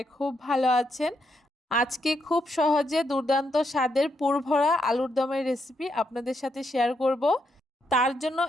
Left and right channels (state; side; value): normal; both; correlation 0.79